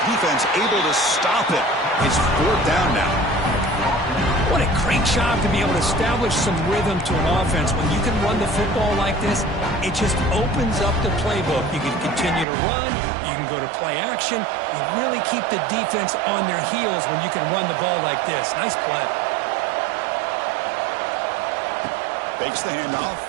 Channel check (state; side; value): drops out; left; at 12.5 s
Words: Defense able to stop it. It's fourth down now. What a great job to be able to establish some rhythm to an offense. When you can run the football like this, it just opens up the playbook. You can continue to run. You can go to play action. You really keep the defense on their heels when you can run the ball like this. Nice play. Fakes the handoff,